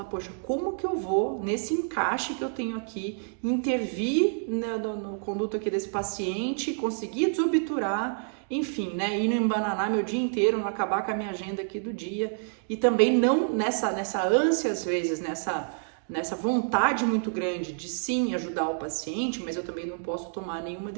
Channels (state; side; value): silent; left; digital silence